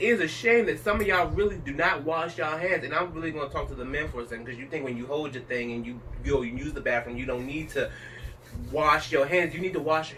is a shame that some of y'all really do not wash y'all hands. And I'm really going to talk to the men for a second, because you think when you hold your thing and you use the bathroom, you don't need to wash your hands. You need to wash your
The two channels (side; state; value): both; identical; correlation 1.00